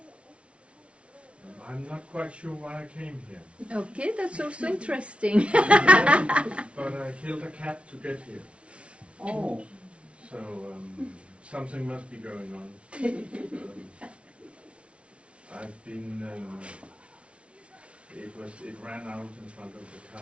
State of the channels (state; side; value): late; left; 0.060 ms